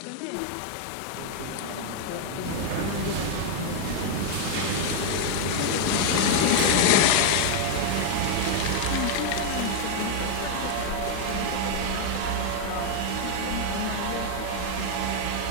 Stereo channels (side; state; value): both; different; correlation 0.00